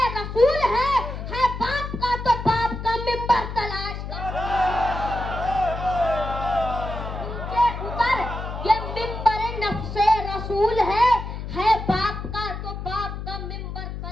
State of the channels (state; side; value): noise; left; hum, 7 dB below the sound